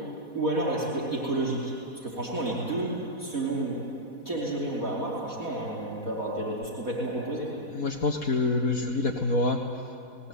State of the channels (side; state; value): right; late; 4.1 ms